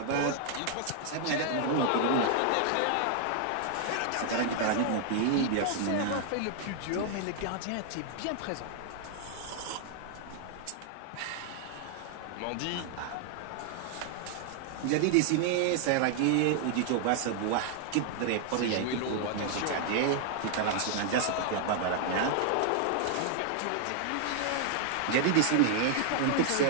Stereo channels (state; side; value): different; both; correlation 0.00